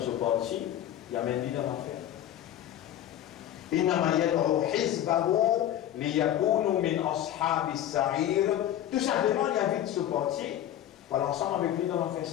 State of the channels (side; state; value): right; quieter; 11.7 dB